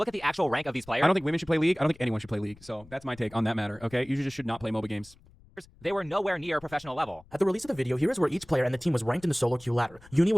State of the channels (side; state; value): left; noise; rumble, 24 dB below the sound